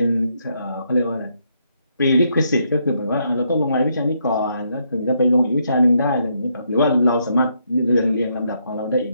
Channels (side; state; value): both; inverted; correlation -0.76